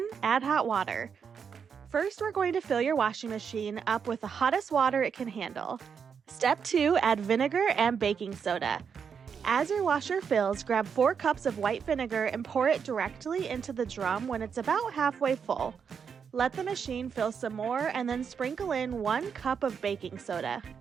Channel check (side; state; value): left; quieter; 6.7 dB